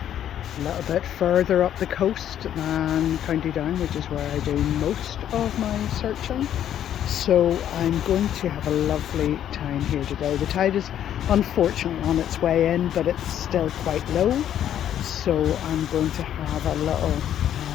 a little bit further up the coast than County Down, which is where I do most of my searching. So I'm going to have a lovely time here today. The tide is unfortunately on its way in, but it's still quite low. So I'm going to have a little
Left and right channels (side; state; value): right; quieter; 10.5 dB